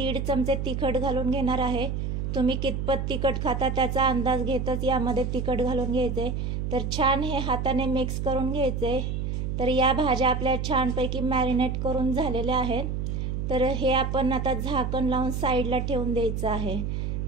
चमचे तिखट घालून घेणार आहे। तुम्ही कितपत तिखट खाता त्याचा अंदाज घेतच यामध्ये तिखट घालून घ्यायचे। तर छान हे हाताने मिक्स करून घ्यायचे। तर या भाज्या आपल्या छानपैकी मॅरिनेट करून झालेल्या आहेत। तर हे आपण आता झाकण लावून साईडला ठेवून द्यायचं आहे।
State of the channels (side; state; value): right; noise; hum, 2 dB below the sound